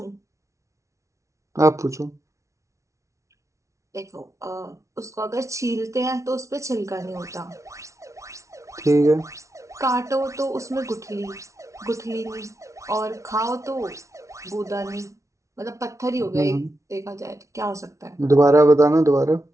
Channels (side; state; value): left; late; 0.14 ms